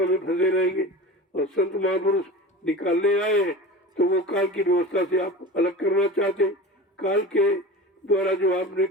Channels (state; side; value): normal; both; correlation 0.33